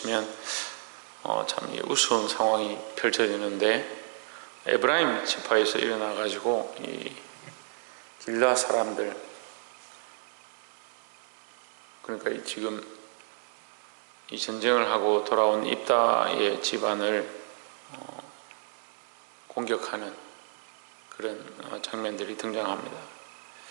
참 우스운 상황이 펼쳐지는데, 에브라임 지파에서 일어나 가지고 이 길라 사람들, 그러니까 지금 이 전쟁을 하고 돌아온 입다의 집안을 공격하는 그런 장면들이 등장합니다.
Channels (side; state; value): left; silent; 57 dB below the other